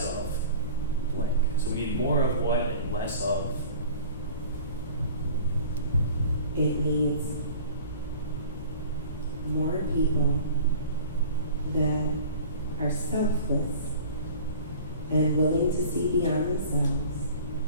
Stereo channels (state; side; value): inverted; both; correlation -0.43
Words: of blank. So we need more of what and less of. It needs more people that are selfless and willing to see beyond themselves.